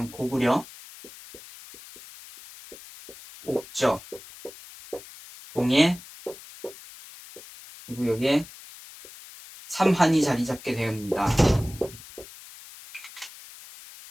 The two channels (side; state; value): left; noise; hiss, 18 dB below the sound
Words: 고구려, 옥저, 동해, 그리고 여기에 삼한이 자리 잡게 됩니다.